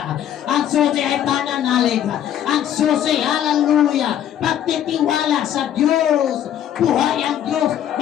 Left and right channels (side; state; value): right; quieter; 10.6 dB